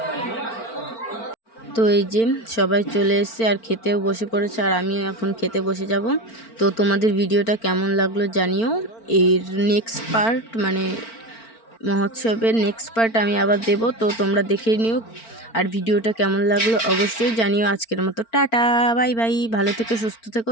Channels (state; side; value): late; right; 4.4 ms